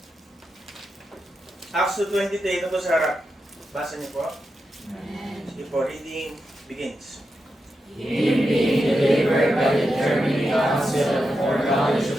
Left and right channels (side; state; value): both; normal; correlation 0.88